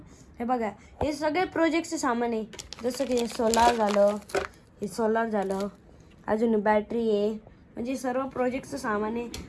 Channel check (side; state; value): both; identical; correlation 1.00